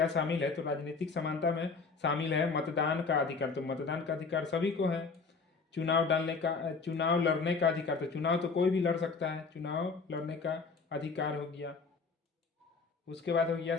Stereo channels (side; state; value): right; quieter; 4.6 dB